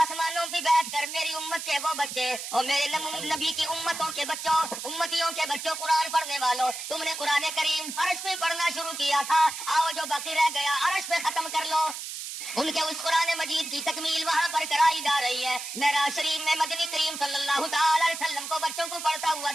پہ بیٹھ کر میری امت کے وہ بچے اور میرے نبی کی امتوں کے بچوں، امتیوں کے بچوں، قرآن پڑھنے والوں، تم نے قرآن کریم فرش پہ پڑھنا شروع کیا تھا، آؤ جو باقی رہ گیا عرش پہ ختم کر لو۔ ان کے اس قرآن مجید کی تکمیل وہاں پر کرائی جا رہی ہے۔ معراج شریف میں مدنی کریم صلی اللہ تعالی علیہ وسلم کو بچوں کو پڑھتا ہوا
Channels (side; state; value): right; noise; hiss, 7 dB below the sound